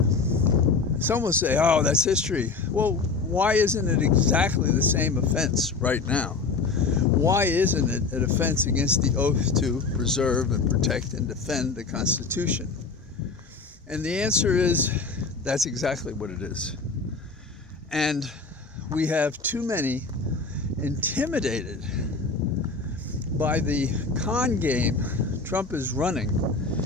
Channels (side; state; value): right; quieter; 4.5 dB